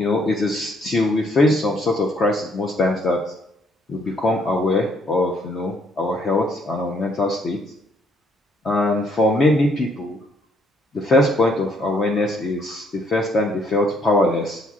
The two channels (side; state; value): both; normal; correlation 0.68